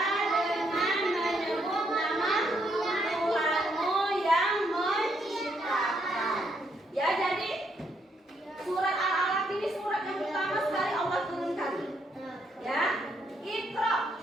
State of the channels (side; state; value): both; normal; correlation 0.74